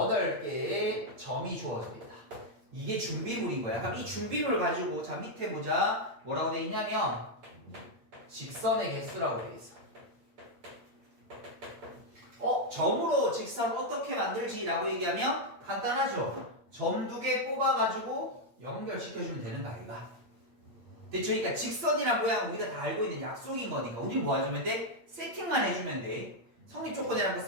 점이 주어져 있다. 이게 준비물인 거야. 그럼 이 준비물 가지고 자 밑에 보자. 뭐라고 돼 있냐면 직선의 개수라고 돼 있어. 점으로 직선 어떻게 만들지라고 얘기하면 간단하죠. 점 2개 뽑아가지고 연결시켜주면 되는 거 아이가? 됐죠? 그러니까 직선이란 모양은 우리가 다 알고 있는 약속인 거니까 우리 뭐 해주면 돼? 세팅만 해주면 돼. 성립 조건이라는 거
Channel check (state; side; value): late; left; 8.8 ms